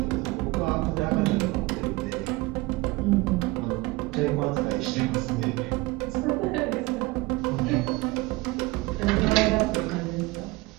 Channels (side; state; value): left; quieter; 21.9 dB